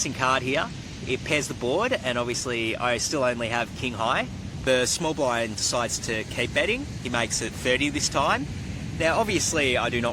card here. It pairs the board, and obviously I still only have King High. The small blind decides to keep betting. He makes it 30 this time. Now obviously I do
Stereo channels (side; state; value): both; identical; correlation 1.00